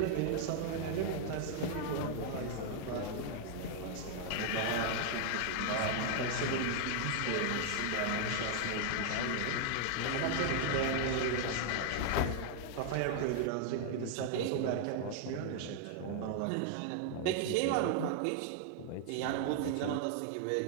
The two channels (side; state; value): both; different; correlation 0.00